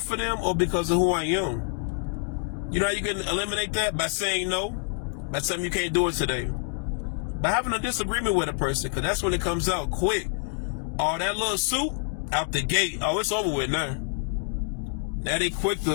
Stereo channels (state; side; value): silent; right; 59 dB below the other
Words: them or because of who I am? You know how you can eliminate that? By saying no, by telling them you can't do it today. By having a disagreement with a person, because that's when it comes out quick. Oh, that little soup out the gate. Oh, it's over with now. Now they quick